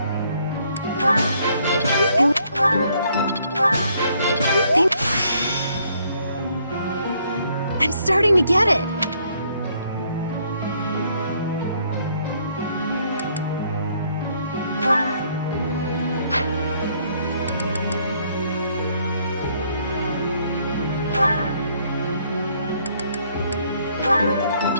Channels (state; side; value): inverted; both; correlation -0.68